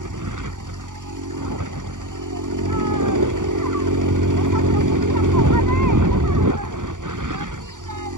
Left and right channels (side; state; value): left; late; 0.87 ms